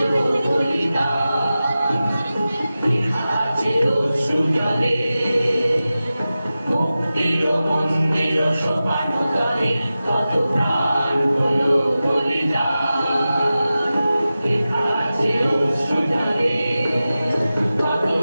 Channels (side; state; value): both; inverted; correlation -0.94